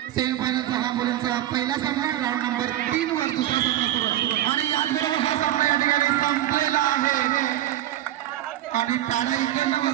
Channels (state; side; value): quieter; left; 13.3 dB